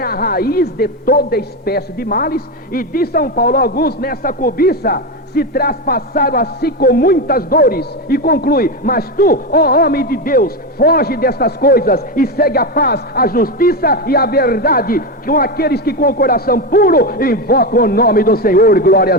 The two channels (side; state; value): both; normal; correlation 0.14